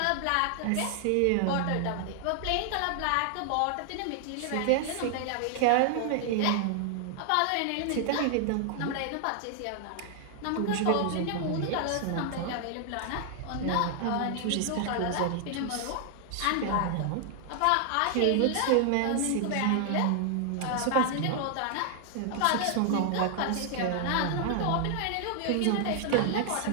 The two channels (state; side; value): different; both; correlation 0.00